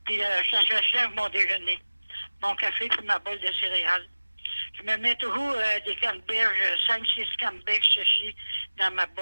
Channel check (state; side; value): inverted; both; correlation -1.00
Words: Puis je achève mon déjeuner. Mon café puis ma bolle de céréales. Je me mets toujours des canneberges, 5-6 canneberges séchées dans ma